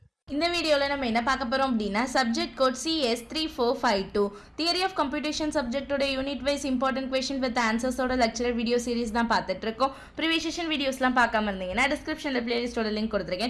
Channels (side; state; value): both; identical; correlation 1.00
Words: இந்த வீடியோவில் நம்ம என்ன பார்க்க போகிறோம் அப்படின்னா subject code CS3452 theory of computation சப்ஜெக்டோட unit wise important question with ஆன்சர்ஸோட lecturer video series தான் பார்த்துட்டு இருக்கோம். ப்ரீவியஸ் செஷன் வீடியோஸ்லாம் பார்க்காம இருந்தீங்கன்னா டிஸ்கிரிப்ஷனில் பிளேலிஸ்டோட லிங்க்